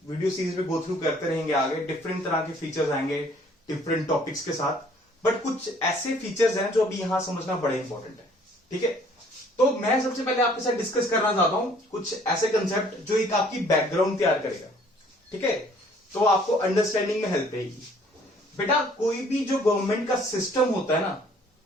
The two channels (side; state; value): both; normal; correlation 0.58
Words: वीडियो सीरीज में गो थ्रू करते रहेंगे आगे, डिफरेंट तरह के फीचर्स आएंगे डिफरेंट टॉपिक्स के साथ, बट कुछ ऐसे फीचर्स हैं जो अभी यहां समझना बड़े इंपॉर्टेंट है। ठीक है, तो मैं सबसे पहले आपके साथ डिस्कस करना चाहता हूं कुछ ऐसे कंसेप्ट जो एक आपकी बैकग्राउंड तैयार करेगा। ठीक है, तो आपको अंडरस्टैंडिंग में हेल्प रहेगी। बेटा कोई भी जो गवर्नमेंट का सिस्टम होता है ना,